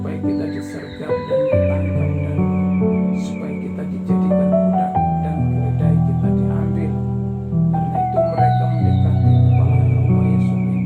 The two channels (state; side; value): identical; both; correlation 1.00